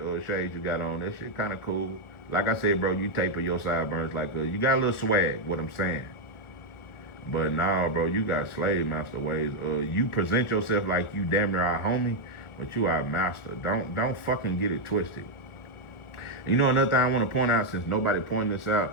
shades you got on. That shit kind of cool. Like I said, bro, you taper your sideburns like you got a little swag, what I'm saying. But nah, bro, you got slave master ways. You present yourself like you damn near our homie, but you our master. Don't fucking get it twisted. You know another thing I want to point out, since nobody pointed this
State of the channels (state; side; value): late; right; 1.4 ms